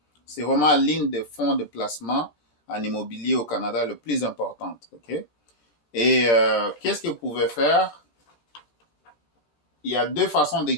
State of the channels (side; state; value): right; late; 13 ms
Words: C'est vraiment l'une des fonds de placement en immobilier au Canada le plus importante, OK? Et qu'est-ce que vous pouvez faire? Il y a deux façons de